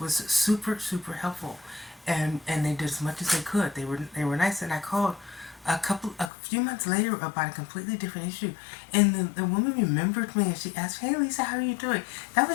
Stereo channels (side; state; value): right; drops out; at 6.3 s